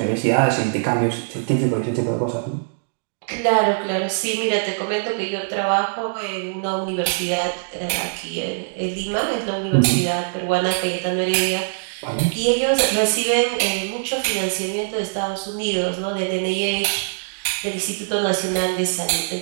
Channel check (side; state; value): left; silent; digital silence